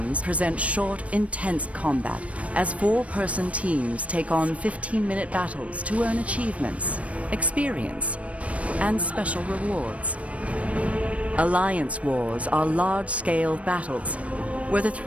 present short, intense combat, as 4-person teams take on 15-minute battles to earn achievements, experience, and special rewards. Alliance wars are large-scale battles, where the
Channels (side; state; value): left; late; 0.064 ms